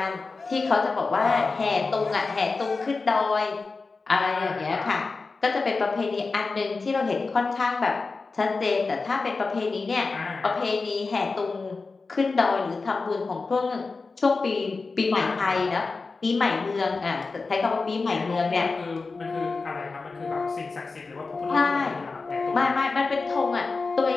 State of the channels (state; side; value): quieter; right; 4.1 dB